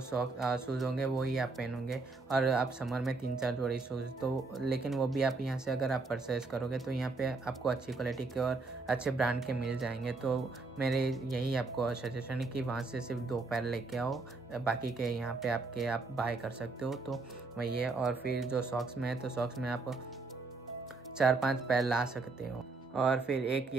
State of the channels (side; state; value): left; quieter; 3.7 dB